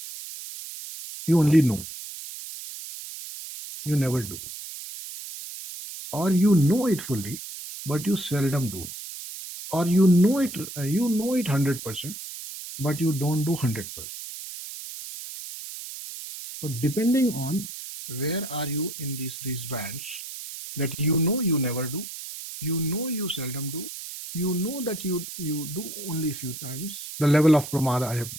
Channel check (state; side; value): noise; right; hiss, 10 dB below the sound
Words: You only know. You never do. Or you know it fully, but you seldom do. Or you know it 100%, but you don't do 100%. So depending on where are you in these bands, that you never do, you seldom do, you know that you do only few times. The level of pramāda I have